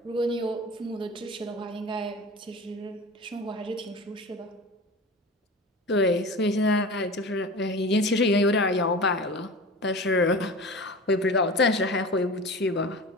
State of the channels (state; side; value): normal; both; correlation 0.34